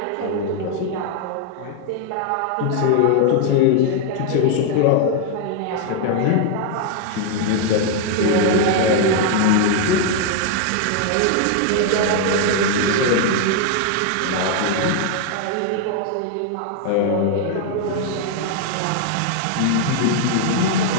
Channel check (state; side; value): different; both; correlation 0.00